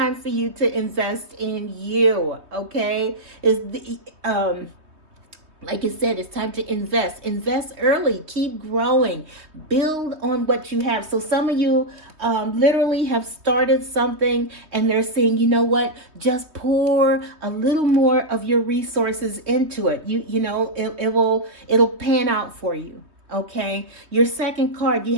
for you to invest in you, okay? Like I said, it's time to invest early, keep growing, build on what you have. So some of you literally have started something and they're saying, you know what, just pour a little more of your resources into it. It'll pan out for you. Okay, your second card, you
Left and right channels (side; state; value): left; late; 3.2 ms